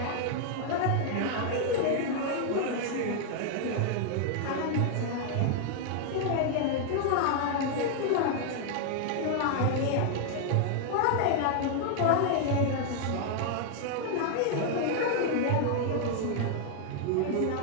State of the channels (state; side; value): different; both; correlation 0.00